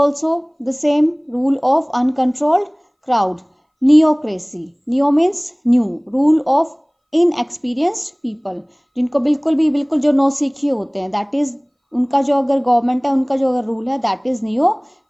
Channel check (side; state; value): both; identical; correlation 1.00